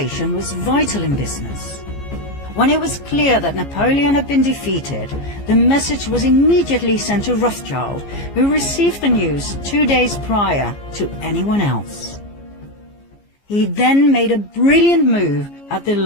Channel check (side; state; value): right; late; 15 ms